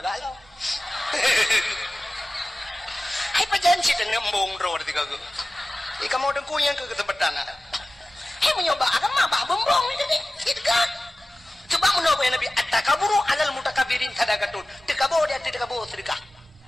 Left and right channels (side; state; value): both; normal; correlation 0.96